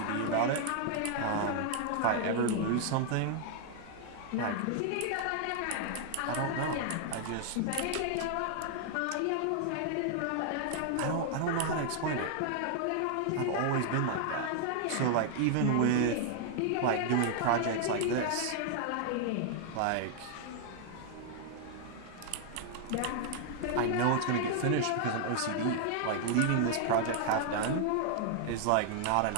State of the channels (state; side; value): different; both; correlation 0.00